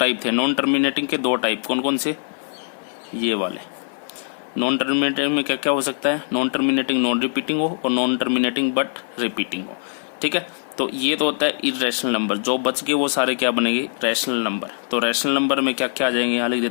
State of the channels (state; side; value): silent; right; 57 dB below the other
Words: थे। नॉन टर्मिनेटिंग के 2 टाइप कौन कौन से? ये वाले। नॉन टर्मिनेटिंग में क्या क्या हो सकता है, नॉन टर्मिनेटिंग नॉन रिपीटिंग हो और नॉन टर्मिनेटिंग बट रिपीटिंग हो, ठीक है। तो ये तो होता है इरेशनल नंबर। जो बच गए वो सारे क्या बनेंगे, रैशनल नंबर। तो रैशनल नंबर में क्या क्या आ जाएंगे, यहाँ लिख